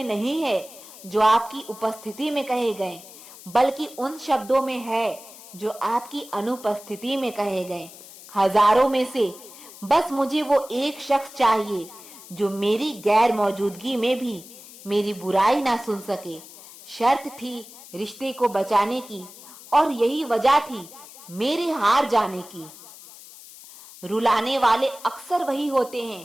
नहीं है जो आपकी उपस्थिति में कहे गए, बल्कि उन शब्दों में है जो आपकी अनुपस्थिति में कहे गए। हजारों में से बस मुझे वो एक शख्स चाहिए जो मेरी गैर मौजूदगी में भी मेरी बुराई ना सुन सके। शर्त थी रिश्ते को बचाने की, और यही वजह थी मेरे हार जाने की। रुलाने वाले अक्सर वही होते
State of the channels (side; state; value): left; noise; hiss, 18 dB below the sound